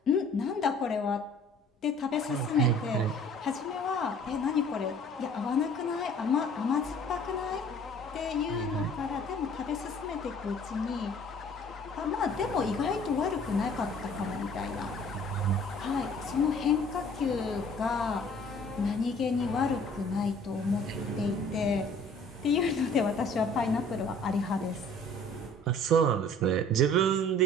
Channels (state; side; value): normal; both; correlation 0.52